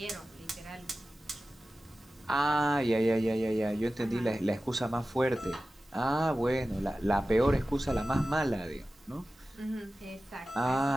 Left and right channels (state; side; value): normal; both; correlation 0.95